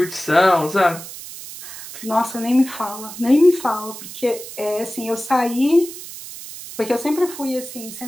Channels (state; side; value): noise; right; hiss, 12 dB below the sound